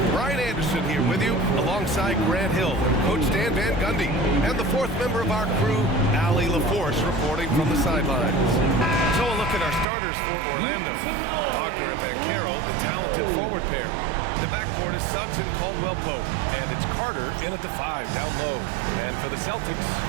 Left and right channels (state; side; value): drops out; left; at 9.9 s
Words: Brian Anderson here with you, alongside Grant Hill and Coach Dan Van Gundy. And the fourth member of our crew, Allie LaForce, reporting from the sidelines. So a look at our starters for Orlando. Wagner and Banchero, the talented forward pair. The backcourt is Suggs and Caldwell-Pope. And it's Carter in at the 5, down low. And for the Celtics,